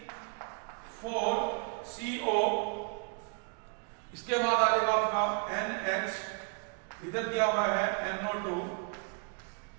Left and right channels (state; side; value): quieter; left; 38.0 dB